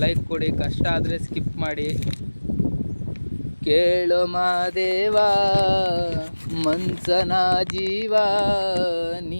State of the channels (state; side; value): inverted; both; correlation -1.00